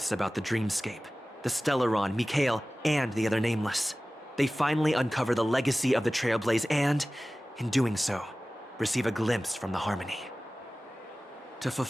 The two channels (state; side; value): normal; both; correlation 0.97